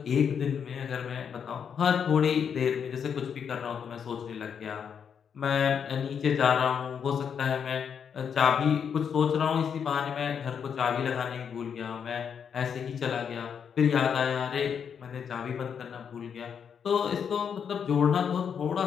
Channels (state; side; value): quieter; right; 7.3 dB